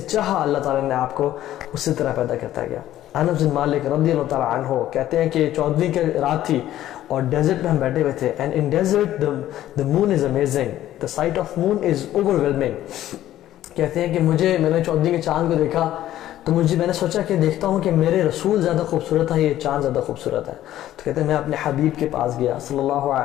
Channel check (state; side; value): quieter; right; 13.2 dB